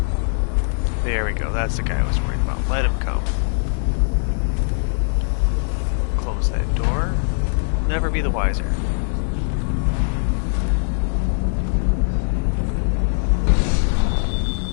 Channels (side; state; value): right; silent; 62 dB below the other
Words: There we go, that's the guy I was worried about. Let him come. Close that door. Never be the wiser.